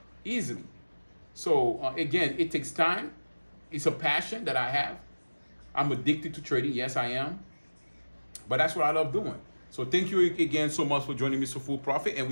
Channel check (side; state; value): both; inverted; correlation -1.00